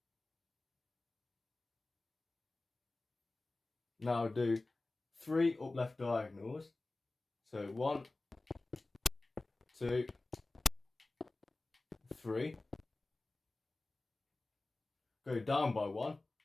Now do 3 up left diagonals. So 1, 2, 3. Go down by 1.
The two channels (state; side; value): quieter; right; 3.1 dB